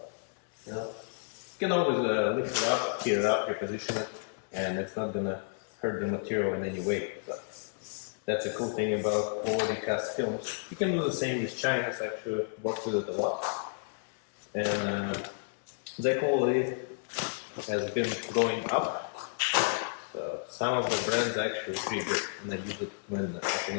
you know, you can always lift it up, heat it up, reposition it, and it's not gonna hurt the material in any way. So that's a cool thing about quality cast films. You can do the same with China. I actually worked with it a lot. and the quality has been going up. So some of the brands are actually pretty good, and I use it when I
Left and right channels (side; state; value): right; silent; digital silence